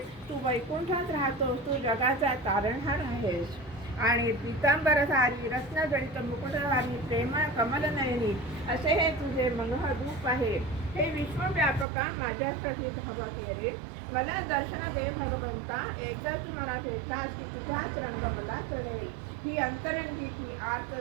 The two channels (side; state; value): left; drops out; at 11.9 s